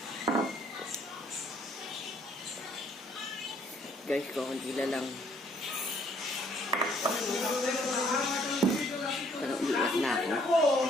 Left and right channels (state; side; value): normal; both; correlation 0.64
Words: Guys, kukunti na lang. Pero umiiyak na ako.